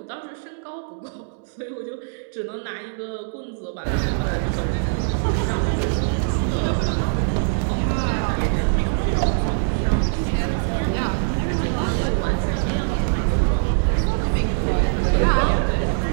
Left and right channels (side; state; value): left; silent; digital silence